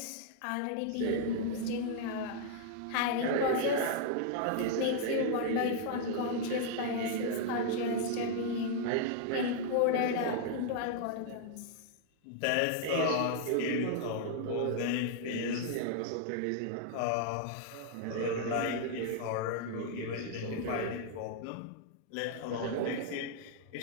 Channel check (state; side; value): different; both; correlation -0.01